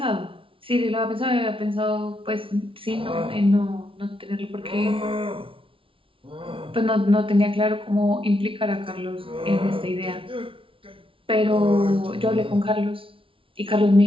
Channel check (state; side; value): late; left; 0.25 ms